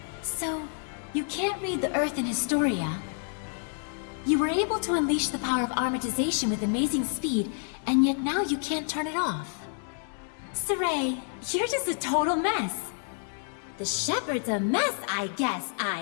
So, you can't read the Earth in Historia. You were able to unleash the power of armatization with amazing speed, and yet now you can't turn it off. Saray, you're just a total mess. The shepherd's a mess, I guess.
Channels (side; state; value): right; silent; 59 dB below the other